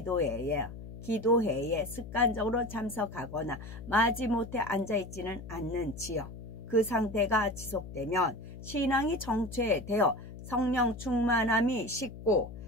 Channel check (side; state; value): left; noise; hum, 12 dB below the sound